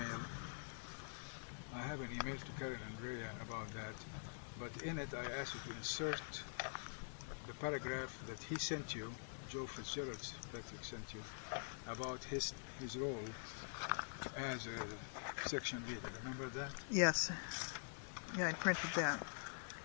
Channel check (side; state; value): right; silent; digital silence